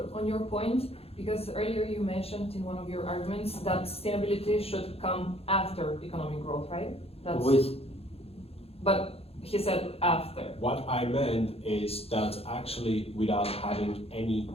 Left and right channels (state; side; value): late; right; 0.28 ms